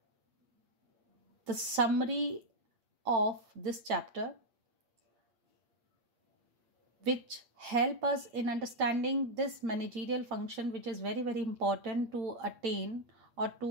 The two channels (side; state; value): left; late; 8.6 ms